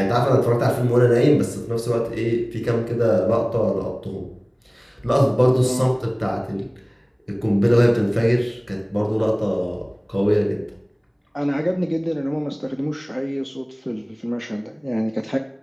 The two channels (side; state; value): both; identical; correlation 1.00